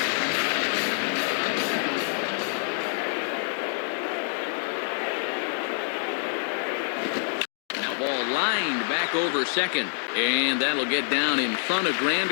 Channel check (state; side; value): silent; right; 57 dB below the other